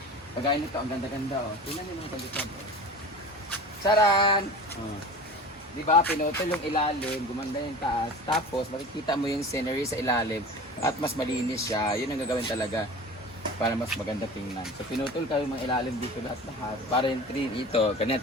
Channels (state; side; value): normal; both; correlation 0.36